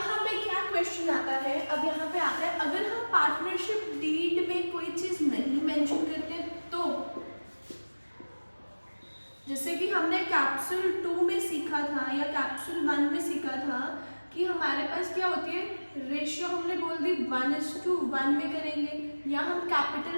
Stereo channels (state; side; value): inverted; both; correlation -1.00